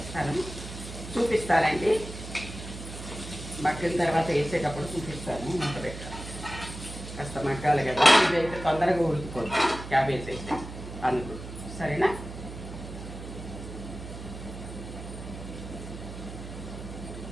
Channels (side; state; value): right; noise; hum, 11 dB below the sound